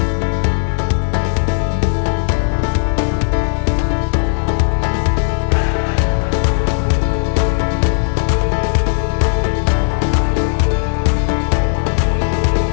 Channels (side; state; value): right; silent; 69 dB below the other